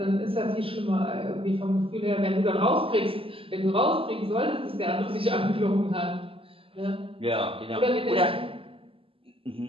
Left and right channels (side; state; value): left; late; 0.26 ms